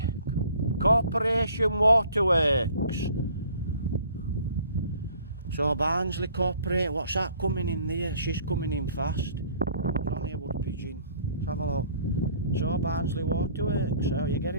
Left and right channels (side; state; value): both; inverted; correlation -0.54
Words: Corporation Waterworks. So Barnsley Corporate, what's that coming in there? She's coming in fast. It's only a wood pigeon. Let's have a look. So Barnsley Waterworks, so you're